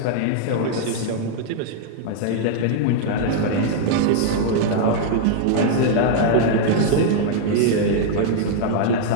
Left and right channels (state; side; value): different; both; correlation -0.01